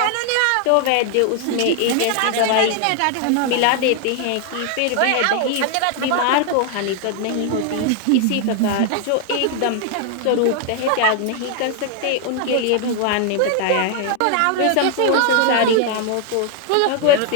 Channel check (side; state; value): both; different; correlation 0.00